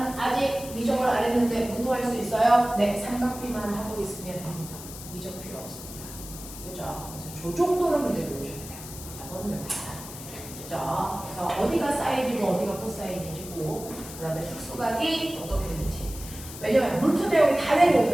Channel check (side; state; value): left; noise; hiss, 13 dB below the sound